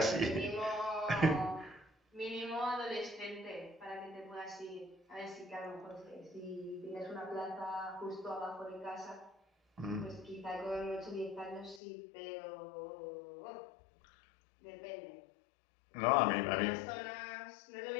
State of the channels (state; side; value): drops out; right; at 11.8 s